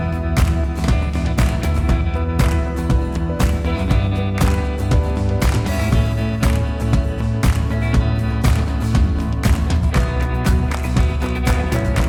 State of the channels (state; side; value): identical; both; correlation 1.00